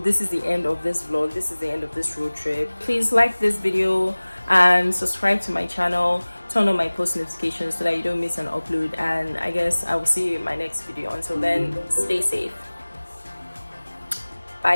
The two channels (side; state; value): both; inverted; correlation -1.00